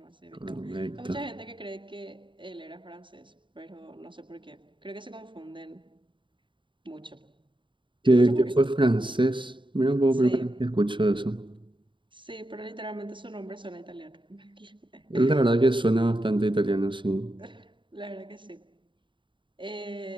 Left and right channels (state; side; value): late; left; 0.24 ms